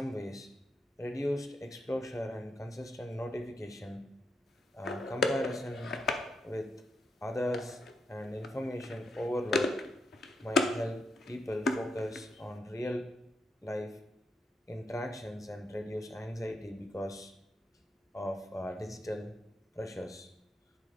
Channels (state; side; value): normal; both; correlation 0.81